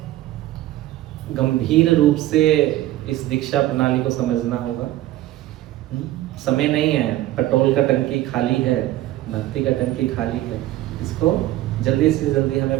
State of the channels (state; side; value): quieter; left; 15.0 dB